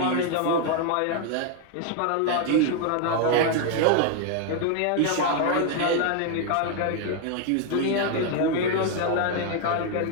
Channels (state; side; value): different; both; correlation 0.00